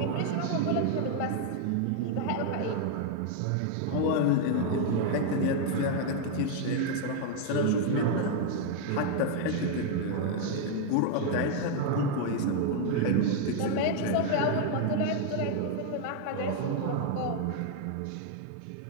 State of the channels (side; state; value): both; different; correlation 0.00